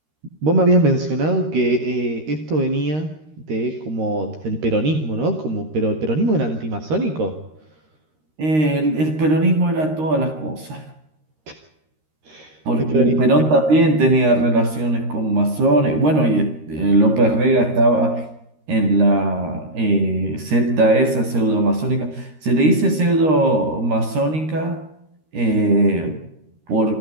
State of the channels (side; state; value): left; late; 13 ms